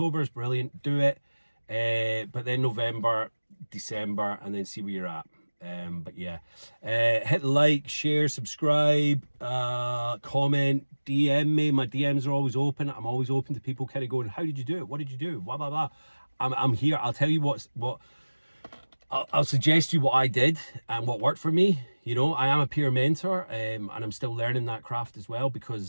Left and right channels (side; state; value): both; inverted; correlation -1.00